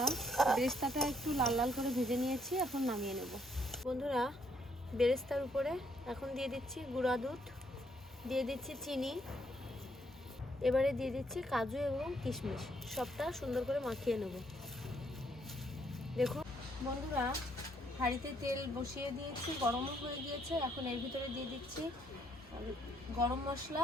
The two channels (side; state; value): both; normal; correlation 0.70